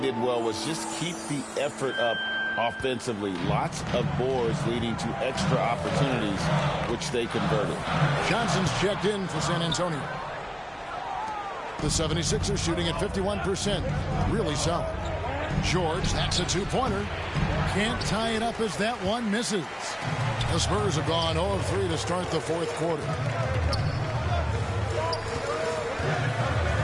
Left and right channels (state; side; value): identical; both; correlation 1.00